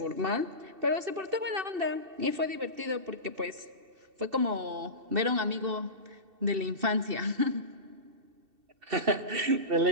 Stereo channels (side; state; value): left; late; 2.7 ms